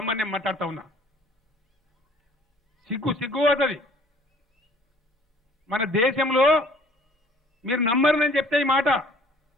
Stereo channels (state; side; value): normal; both; correlation 0.54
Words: నేను మాట్లాడుతా ఉన్నా. సిగ్గు అవుతుంది. మన దేశంలో మీరు నమ్మరని చెప్తే ఈ మాట,